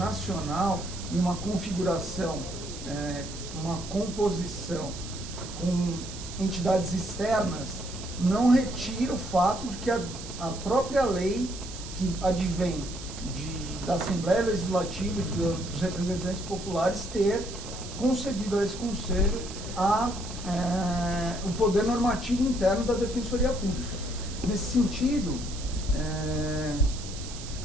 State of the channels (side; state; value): right; noise; hiss, 12 dB below the sound